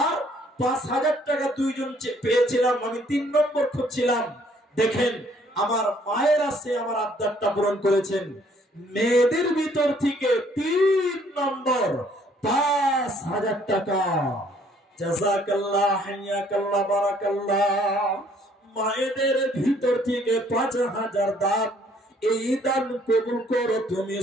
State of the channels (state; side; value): normal; both; correlation 0.62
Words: আর 5,000 টাকা দুইজন পেয়েছিলাম, আমি 3 নম্বর খুঁজছিলাম। দেখেন, আমার মায়ের আছে আমার আবদারটা পূরণ করেছেন। মেয়েদের ভিতর থেকে 3 নম্বর 5,000 টাকা। জাযাকাল্লাহ, হাইয়াকাল্লাহ, বারাকাল্লাহ। মায়েদের ভিতর থেকে 5,000 দান, এই দান কবুল করো তুমি